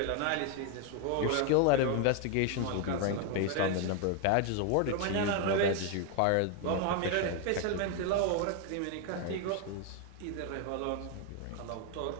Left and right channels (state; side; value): different; both; correlation 0.01